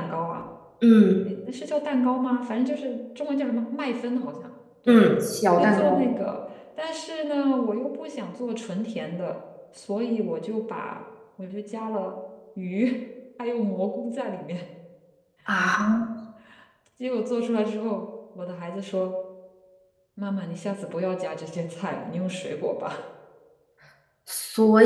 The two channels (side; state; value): both; identical; correlation 1.00